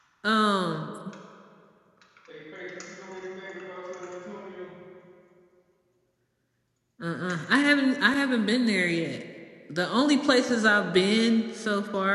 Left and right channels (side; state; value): both; identical; correlation 1.00